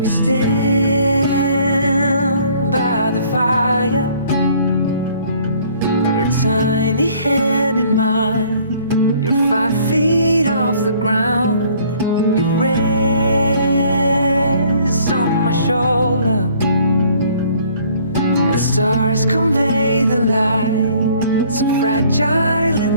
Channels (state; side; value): inverted; both; correlation -0.58